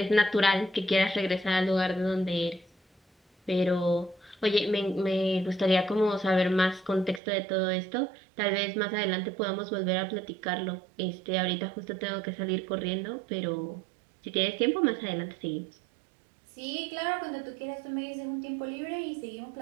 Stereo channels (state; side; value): drops out; left; at 7.2 s